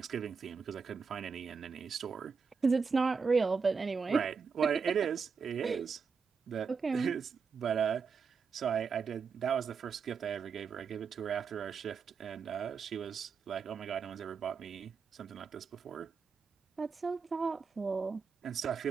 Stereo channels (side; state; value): left; quieter; 5.5 dB